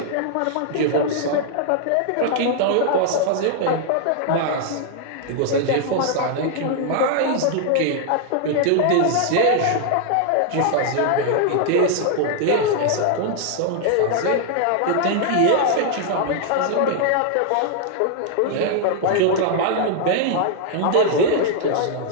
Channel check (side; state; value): both; different; correlation 0.00